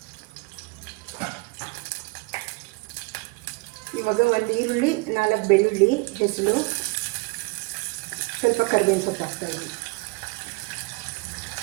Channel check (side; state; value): left; quieter; 28.5 dB